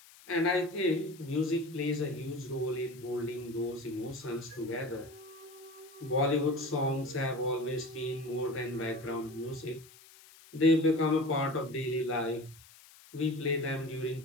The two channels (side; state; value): left; noise; hiss, 22 dB below the sound